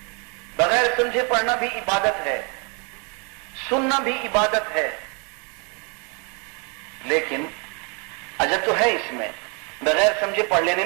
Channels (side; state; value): left; quieter; 34.4 dB